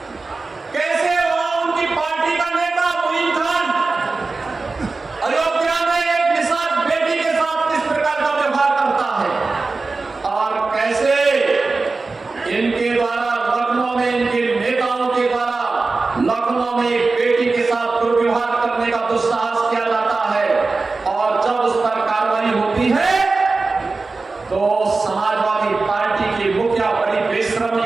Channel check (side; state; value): left; quieter; 3.8 dB